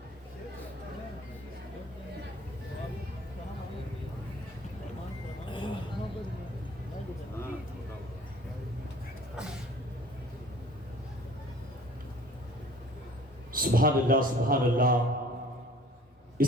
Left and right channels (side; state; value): both; normal; correlation 0.50